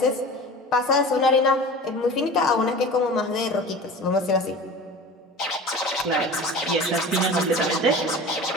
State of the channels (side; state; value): both; normal; correlation 0.37